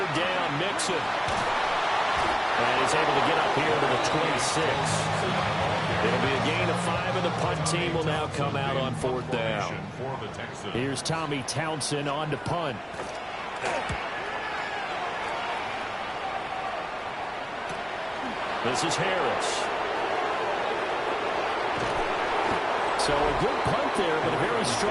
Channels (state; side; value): identical; both; correlation 1.00